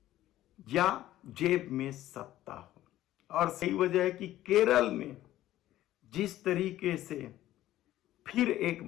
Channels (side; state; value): right; quieter; 14.1 dB